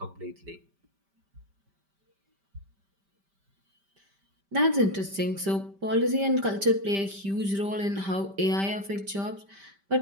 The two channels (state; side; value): late; left; 5.1 ms